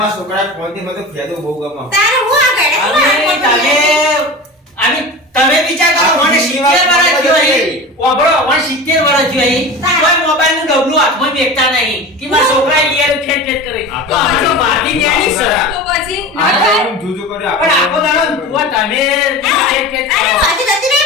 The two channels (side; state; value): both; normal; correlation 0.31